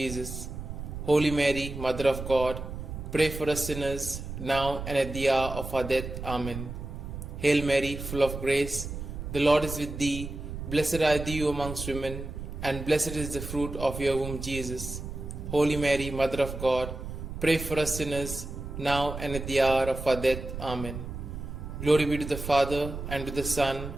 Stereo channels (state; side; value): noise; right; rumble, 8 dB below the sound